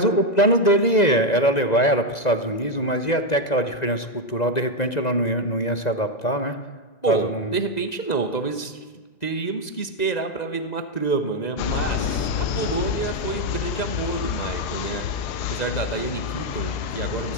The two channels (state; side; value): late; right; 2.0 ms